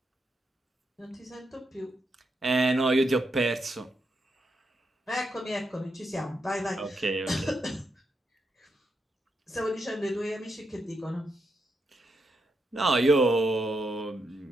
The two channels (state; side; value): normal; both; correlation 0.83